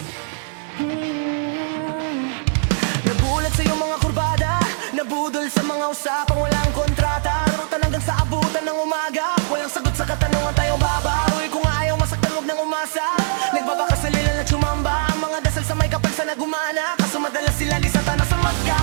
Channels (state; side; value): silent; left; 64 dB below the other